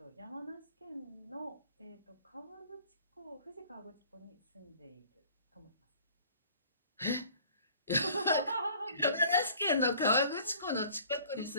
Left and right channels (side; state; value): both; inverted; correlation -0.52